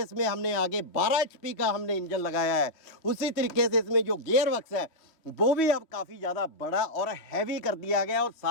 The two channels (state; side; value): late; right; 3.1 ms